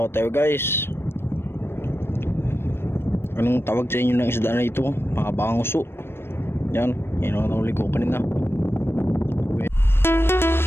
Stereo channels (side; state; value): right; late; 0.12 ms